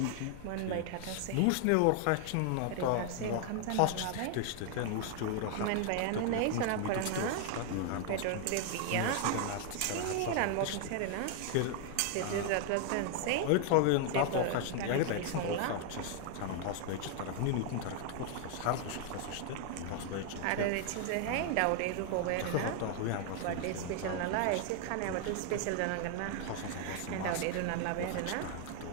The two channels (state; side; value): different; both; correlation 0.00